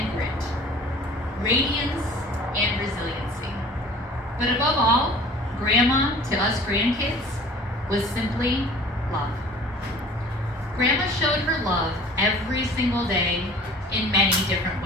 grit, radiance and resiliency. But above all, Grandma, to us grandkids, was simply love. Grandma showed her love every single day in many different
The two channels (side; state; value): both; normal; correlation 0.46